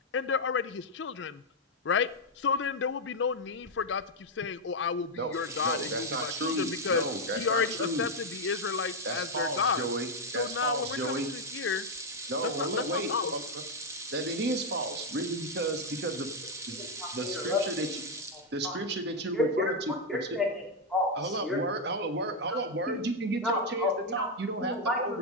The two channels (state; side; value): normal; both; correlation 0.02